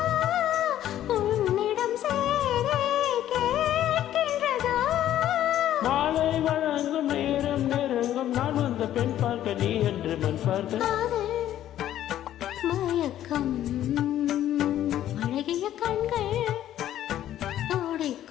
உன்னிடம் சேரை கேட்கின்றதா மாலை வழங்கும் நேரம் நெருங்கும் நான் வந்த பெண் பார்க்க நீ என்று மண் பார்க்க மயக்கம் அழகிய கண்கள்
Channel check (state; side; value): quieter; right; 12.1 dB